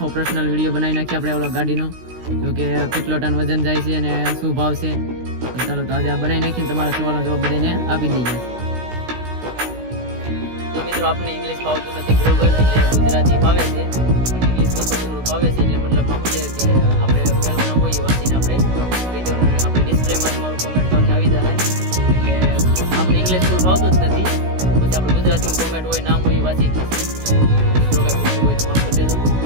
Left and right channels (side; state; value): left; late; 16 ms